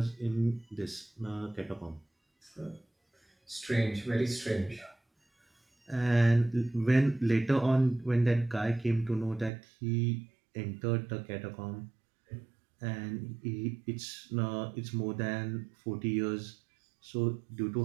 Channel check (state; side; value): drops out; left; at 9.5 s